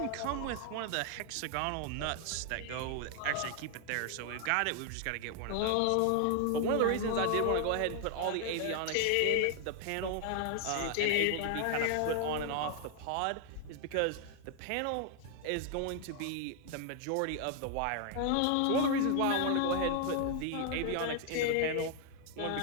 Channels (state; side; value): different; both; correlation 0.00